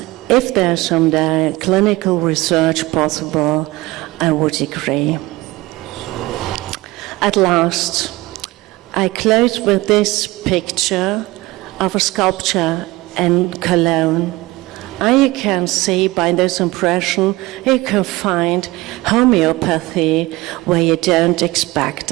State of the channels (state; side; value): quieter; left; 20.4 dB